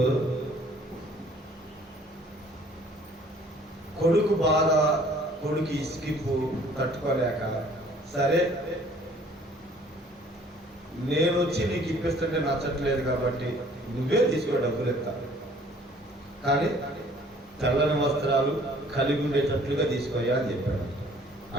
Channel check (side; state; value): both; normal; correlation 0.56